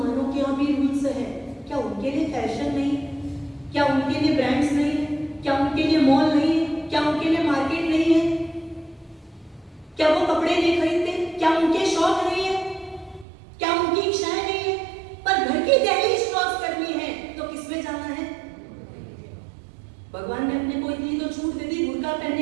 के यहाँ भी रूल्स हैं। क्या उनके लिए फैशन नहीं? क्या उनके लिए ब्रांड्स नहीं है? क्या उनके लिए मॉल नहीं है? क्या उनके लिए मार्केट नहीं है? क्या वो कपड़े नहीं खरीदते? क्या उनके शौक नहीं है? क्या उनकी इच्छाएं नहीं है? पर घर की दहलीज क्रॉस करनी है तो किसमें जाना है? भगवान ने अपने को इतनी तो छूट दे दी, बुर्का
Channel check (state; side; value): drops out; left; at 13.2 s